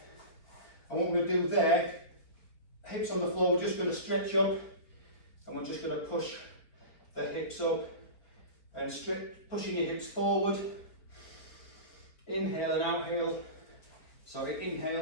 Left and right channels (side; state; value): right; late; 4.4 ms